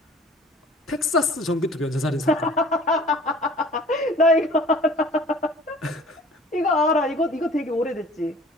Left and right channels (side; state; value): both; normal; correlation 0.48